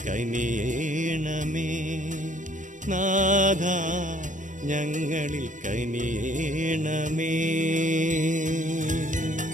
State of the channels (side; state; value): left; late; 0.37 ms